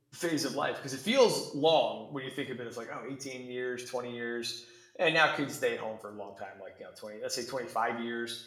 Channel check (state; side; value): identical; both; correlation 1.00